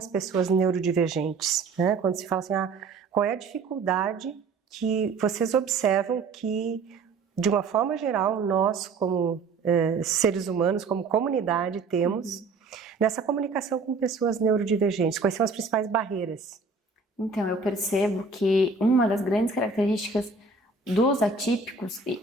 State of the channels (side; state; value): left; quieter; 4.3 dB